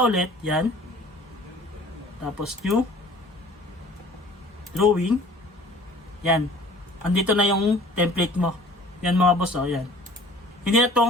ulit, yan. Tapos new. Drawing. Yan. Andito na yung template mo. Yan mga boss, oh, yan. Hindi na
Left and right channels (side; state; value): both; normal; correlation 0.49